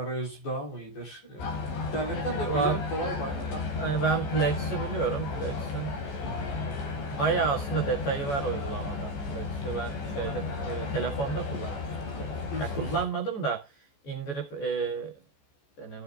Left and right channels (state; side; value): late; right; 14 ms